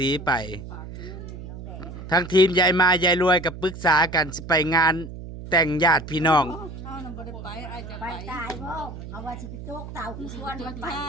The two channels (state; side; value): noise; right; hum, 11 dB below the sound